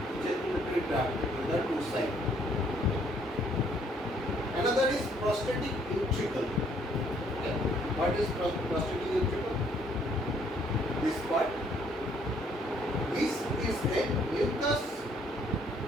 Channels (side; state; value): both; normal; correlation 0.65